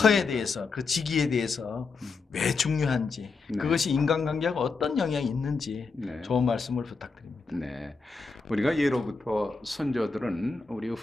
터에 대해서, 그 지기에 대해서 왜 중요한지, 네, 그것이 인간관계하고 어떤 영향이 있는지 네, 좋은 말씀을 부탁드립니다. 네. 우리가 예로부터 선조들은 우리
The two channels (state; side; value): quieter; right; 4.4 dB